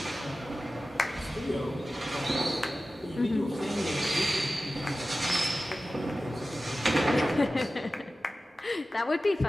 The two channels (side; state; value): both; normal; correlation 0.95